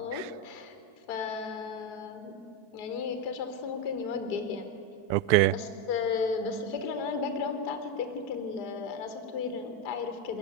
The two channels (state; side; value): late; right; 4.6 ms